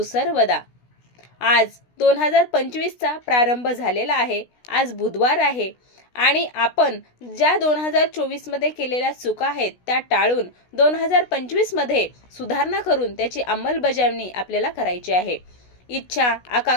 आज 2025चा प्रारंभ झालेला आहे. आज बुधवार आहे आणि आपण ज्या 2024मध्ये केलेल्या चुका आहेत त्या टाळून 2025मध्ये सुधारणा करून त्याची अंमलबजावणी आपल्याला करायची आहे. इच्छा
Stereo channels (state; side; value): late; right; 16 ms